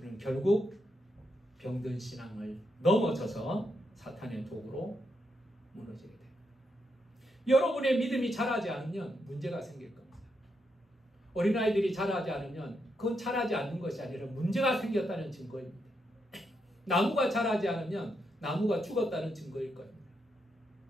결국 병든 신앙을 넘어져서 사탄의 도구로 무너지게 됩니다. 여러분의 믿음이 자라지 않으면 문제가 생길 겁니다. 어린아이들이 자라지 않으면 그건 자라지 않는 것이 아니라 문제가 생겼다는 증거입니다. 나무가 자라지 않으면 나무가 죽었다는 증거일 겁니다.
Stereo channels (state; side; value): normal; both; correlation 0.81